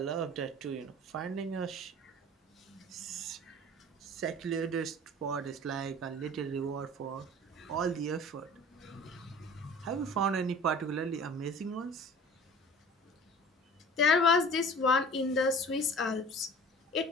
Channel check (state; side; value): normal; both; correlation 0.43